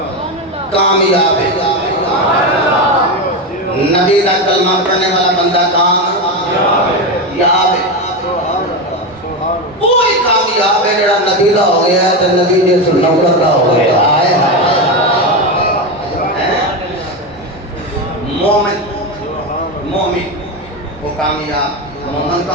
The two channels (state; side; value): normal; both; correlation 0.15